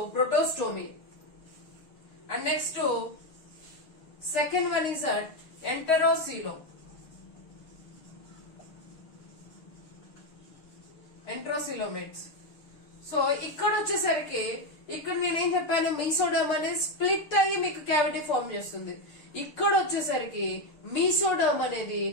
protostome. And next second one is enterocoelom. Enterocoelomates. So ఇక్కడ వచ్చేసరికి ఇక్కడ నేనేం చెప్పాను, మీసోడమ్ అనేది స్ప్లిట్ అయ్యి మీకు క్యావిటీ ఫామ్ చేస్తుంది. ఇక్కడ వచ్చేసరికి మీసోడమ్ అనేది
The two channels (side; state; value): right; late; 6.7 ms